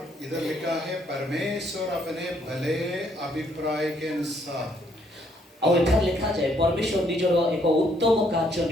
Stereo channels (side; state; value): both; normal; correlation 0.69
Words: इधर लिखा है परमेश्वर अपने भले अभिप्राय के अनुसार। और इधर लिखा जाए परमेश्वर निजर एक उत्तम कार्य